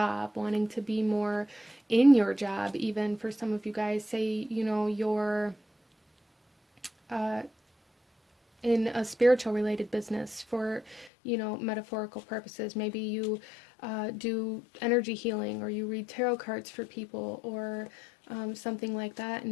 wanting to be more in your job. Even for some of you guys, say, you know, you're in a spiritual related business for, you know, metaphorical purposes. Maybe you do energy healing, or you read tarot cards for people, or something like that,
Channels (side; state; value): right; drops out; at 11.1 s